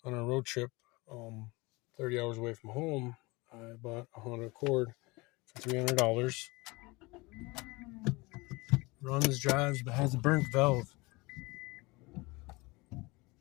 on a road trip. 30 hours away from home, I bought a Honda Accord for $300. Runs, drives, but has a burnt valve.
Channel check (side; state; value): right; quieter; 24.1 dB